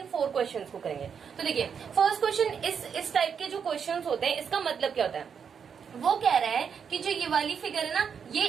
4 क्वेश्चंस को करेंगे। तो देखिए फर्स्ट क्वेश्चन, इस टाइप के जो क्वेश्चंस होते हैं, इसका मतलब क्या होता है? वो कह रहा है कि जो ये वाली फिगर है ना,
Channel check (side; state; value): left; quieter; 6.9 dB